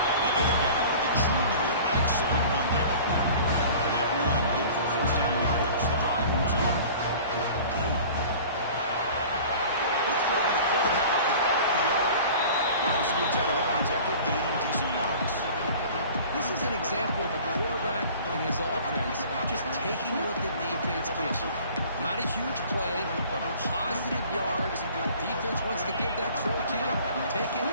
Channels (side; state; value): both; inverted; correlation -0.44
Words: They get him down with the junior with an excellent run there. And that run good for first down yardage. The drive moves on. Scoots out of bounds after gaining decent yards. This is an example of a quarterback and his offense just taking what the defense gives you. Not a huge play, but positive yards. Defense wants to give that throw to you. Take it,